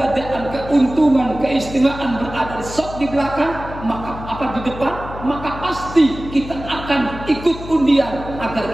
keuntungan, keistimewaan berada di shaf di belakang, maka apa di depan, maka pasti kita akan ikut undian agar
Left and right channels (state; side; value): noise; left; hum, 12 dB below the sound